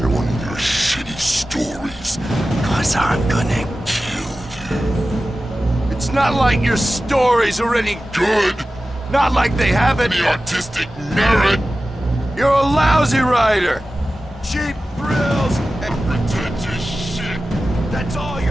one of your shitty stories, 'cause I'm gonna kill you. It's not like your stories are any good. Not like they have any artistic merit. You're a lousy writer. Cheap thrills and pretentious shit. That's all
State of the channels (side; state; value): both; normal; correlation 0.95